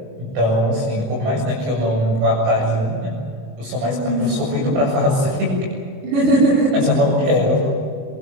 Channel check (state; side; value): late; left; 23 ms